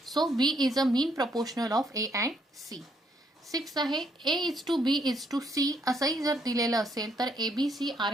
So B is a mean proportional of A and C. Sixth आहे A:2B:C असंही जर दिलेलं असेल तर ABC आर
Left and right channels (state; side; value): normal; both; correlation 0.72